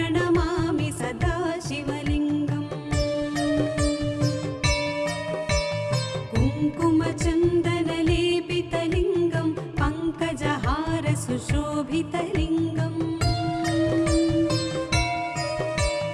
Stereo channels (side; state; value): both; identical; correlation 1.00